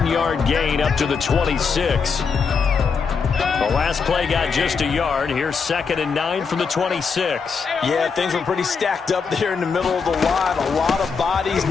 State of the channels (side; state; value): right; quieter; 5.5 dB